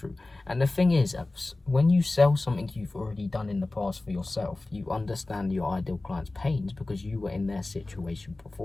And the thing is, when you sell something you've already done in the past for yourself, you understand your ideal client's pains because you were in their situation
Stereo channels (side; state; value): right; quieter; 3.0 dB